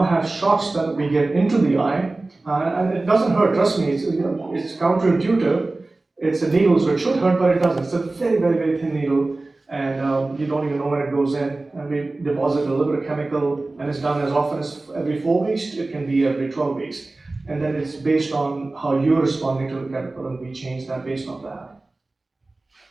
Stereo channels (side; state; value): left; quieter; 3.1 dB